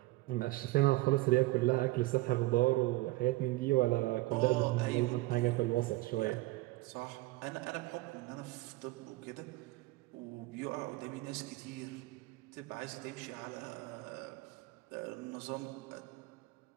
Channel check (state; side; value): quieter; left; 19.9 dB